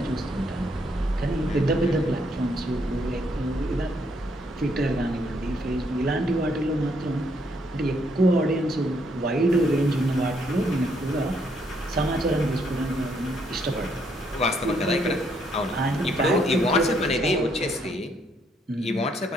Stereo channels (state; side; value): normal; both; correlation 0.72